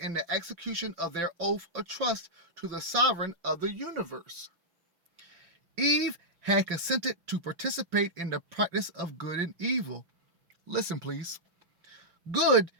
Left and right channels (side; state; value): left; late; 5.9 ms